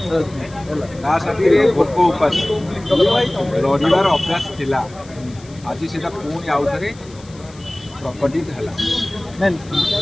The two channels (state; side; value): noise; left; hiss, 24 dB below the sound